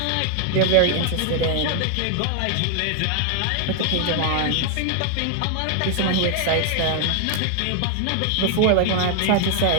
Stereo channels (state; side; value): different; both; correlation 0.00